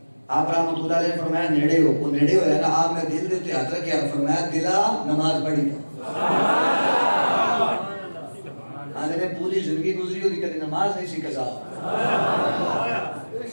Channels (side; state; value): both; inverted; correlation -1.00